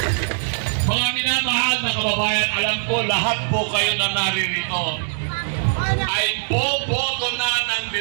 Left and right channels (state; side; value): silent; left; digital silence